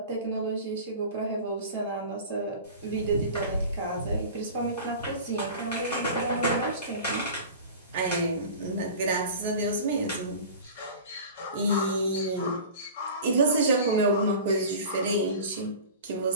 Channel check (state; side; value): inverted; both; correlation -0.37